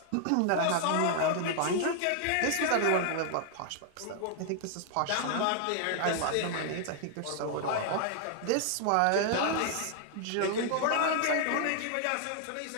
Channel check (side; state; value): both; different; correlation 0.00